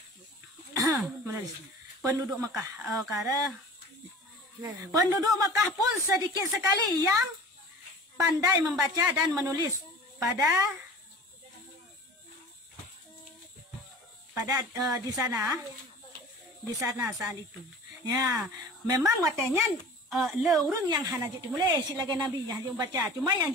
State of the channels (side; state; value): both; normal; correlation 0.40